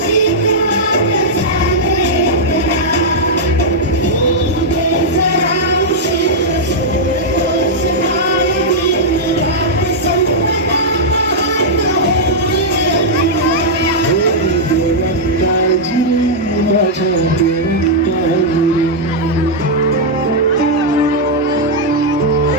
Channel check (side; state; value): both; normal; correlation -0.06